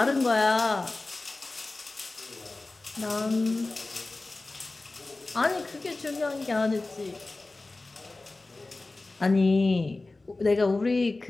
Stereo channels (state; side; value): quieter; right; 3.2 dB